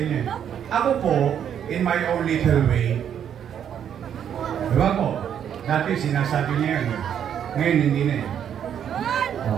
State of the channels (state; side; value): quieter; left; 9.0 dB